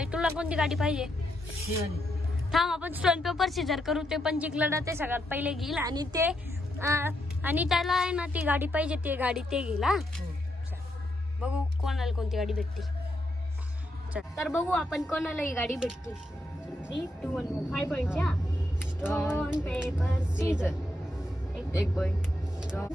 तुला कोणती गाडी पाहिजे? थांब आपण स्टोन पेपर सीझर करू। ते पण जिंकलं ते सगळ्यात पहिले घेईल आणि त्याला आहे ना ती गाडी पाहिजे, ती गाडी ते घेईल। हा बघू कोणाला कोणती गाडी भेटते। तर बघू आपण कोणाला ही गाडी भेटते। 3, 2, 1 5 पॉइंटच्या स्टोन पेपर सीझर। एक पॉइंट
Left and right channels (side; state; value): both; normal; correlation 0.81